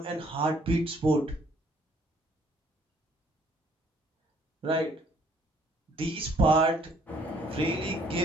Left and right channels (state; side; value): normal; both; correlation 0.62